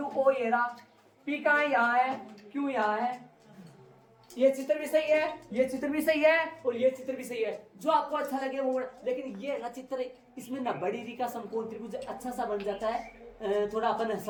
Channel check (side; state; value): both; identical; correlation 1.00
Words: ओ ये रहा, पी कहाँ यहाँ है, क्यों यहाँ है, ये चित्र भी सही है, ये चित्र भी सही है, और ये चित्र भी सही है, जो आपको अच्छा लगे वो, लेकिन ये ना चित्र, इसमें ना बड़ी री का समकोण त्रिभुज अच्छा सा बन जाता है, थोड़ा अपन